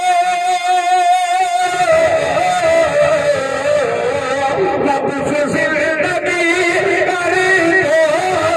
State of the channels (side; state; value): both; identical; correlation 1.00